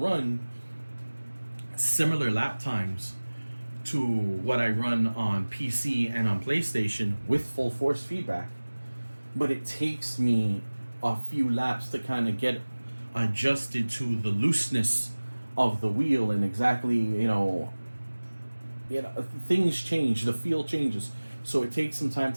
similar lap times to what I run on PC and on PlayStation with full force feedback, but it takes me a few laps to kind of get adjusted to the looseness of the wheel, and exactly things change, the feel changes, so it takes some time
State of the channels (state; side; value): inverted; both; correlation -1.00